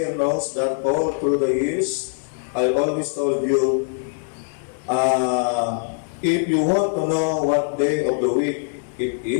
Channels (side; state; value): right; silent; digital silence